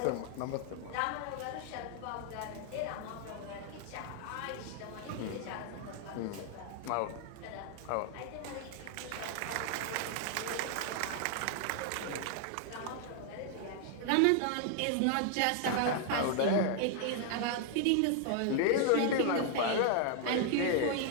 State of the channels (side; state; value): both; different; correlation 0.00